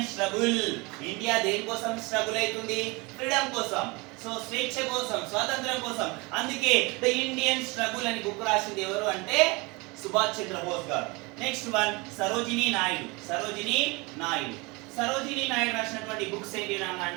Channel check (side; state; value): left; quieter; 26.3 dB